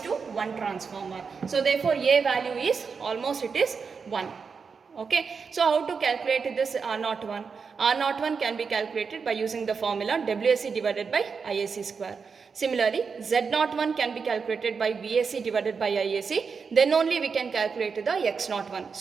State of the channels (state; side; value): quieter; left; 5.5 dB